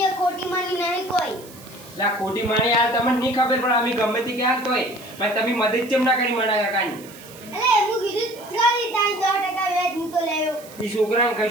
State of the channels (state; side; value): noise; right; hiss, 20 dB below the sound